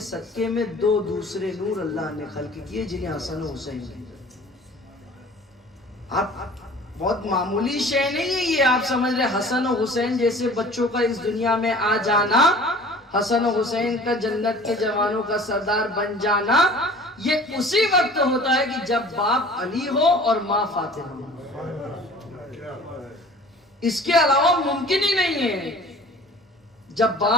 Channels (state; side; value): normal; both; correlation 0.46